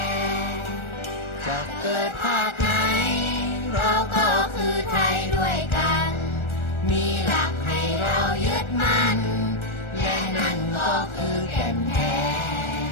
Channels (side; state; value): right; late; 1.3 ms